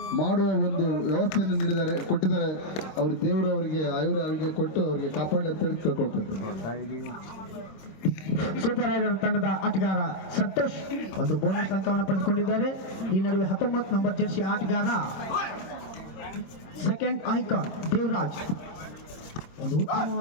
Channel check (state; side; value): late; right; 26 ms